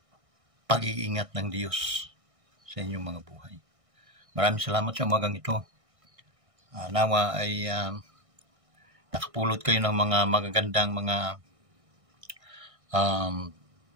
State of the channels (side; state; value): left; late; 1.6 ms